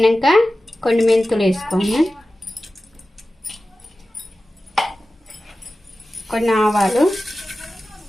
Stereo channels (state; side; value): normal; both; correlation 0.95